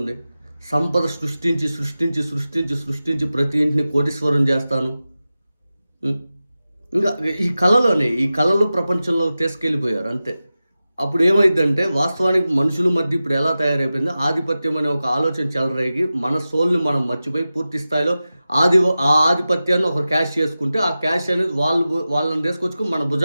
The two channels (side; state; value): both; inverted; correlation -0.94